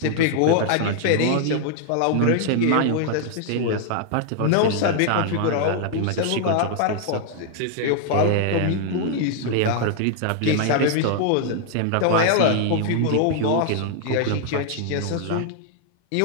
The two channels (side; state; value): both; different; correlation 0.00